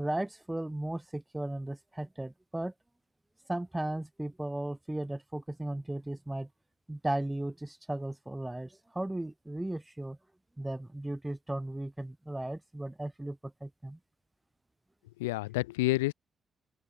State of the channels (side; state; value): both; normal; correlation 0.67